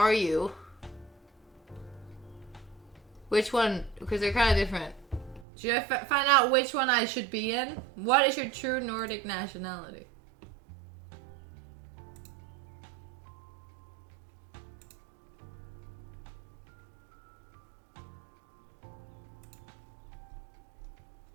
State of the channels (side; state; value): left; drops out; at 5.5 s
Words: you? Which one? Because they're kind of different. Should I find out which one I should be in? What is your true Nordic nationality?